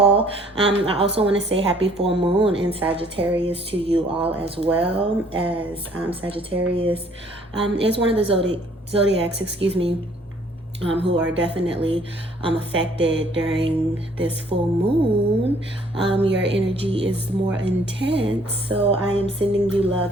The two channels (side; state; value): both; normal; correlation 0.60